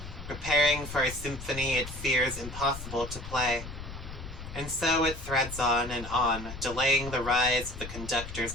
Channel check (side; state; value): left; noise; rumble, 10 dB below the sound